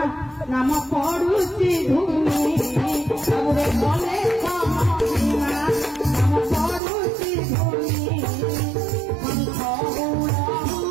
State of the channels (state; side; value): drops out; left; at 6.8 s